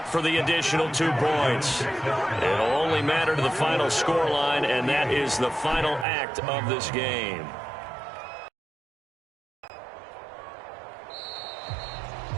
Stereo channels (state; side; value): drops out; left; at 6.1 s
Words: for the additional 2 points. It'll only matter to the final scoreline, and that is the final act of this game.